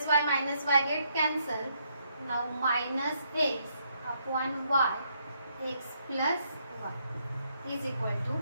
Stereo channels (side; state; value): both; inverted; correlation -0.74